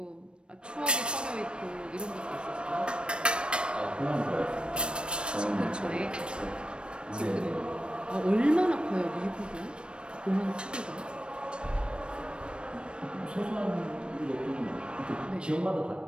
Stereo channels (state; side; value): late; left; 0.056 ms